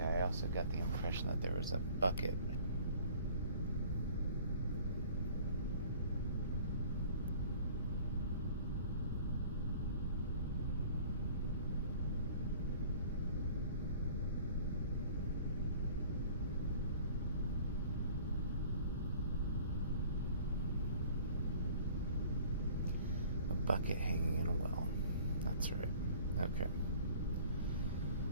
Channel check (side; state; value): both; inverted; correlation -0.50